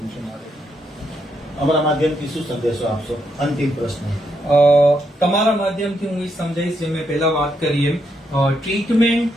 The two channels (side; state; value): both; normal; correlation 0.79